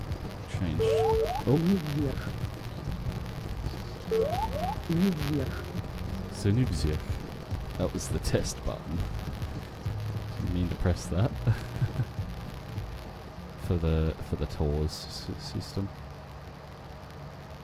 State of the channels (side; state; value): both; identical; correlation 1.00